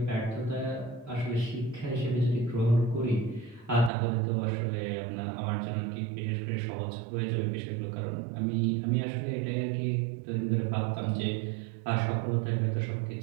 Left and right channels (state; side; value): drops out; left; at 3.9 s